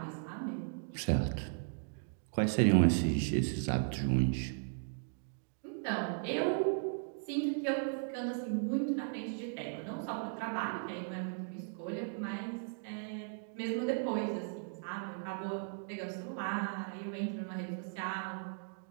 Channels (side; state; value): left; silent; digital silence